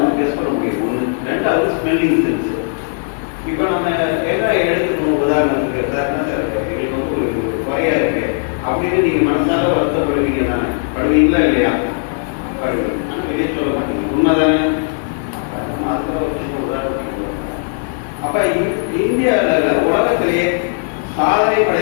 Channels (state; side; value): silent; right; digital silence